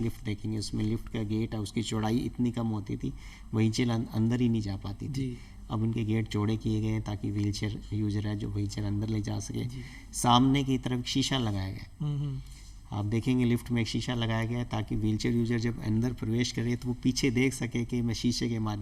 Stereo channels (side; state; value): both; identical; correlation 1.00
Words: लिफ्ट देखेंगे उसमें लिफ्ट का गेट है, उसकी चौड़ाई इतनी कम होती थी, व्हीलचेयर अंदर ही नहीं जा पाती थी। अब उनके गेट चौड़े किए गए हैं ताकि व्हीलचेयर यूजर है जो व्हीलचेयर अंदर ले जा सके। सामने की तरफ शीशा लगाया गया, आप देखेंगे लिफ्ट में एक शीशा लगाया गया है ताकि व्हीलचेयर यूजर जब अंदर प्रवेश करे तो वो पीछे देख सके कि मैं शीशे के